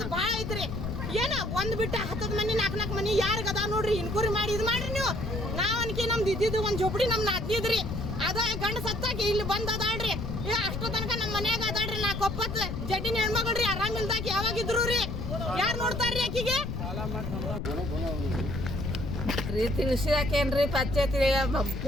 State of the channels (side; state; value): left; noise; rumble, 4 dB below the sound